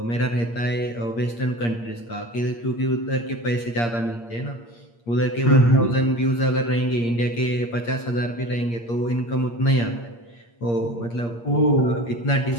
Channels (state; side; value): late; right; 8.6 ms